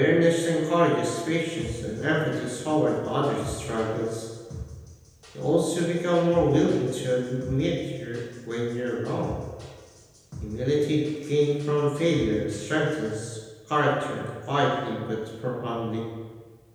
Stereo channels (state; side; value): identical; both; correlation 1.00